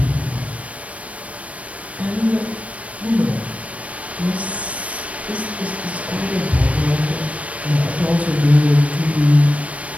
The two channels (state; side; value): late; left; 0.065 ms